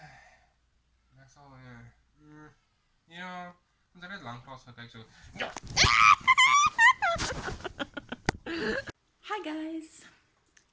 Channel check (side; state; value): both; identical; correlation 1.00